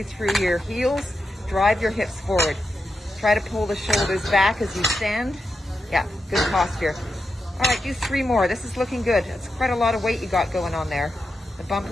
through your heels, drive your hips forward. Try to pull the shoulders back as you stand. Yeah, good posture. All right, do 3 more. This is looking good. It's quite a lot of weight you got going on there. The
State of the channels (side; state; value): both; normal; correlation 0.87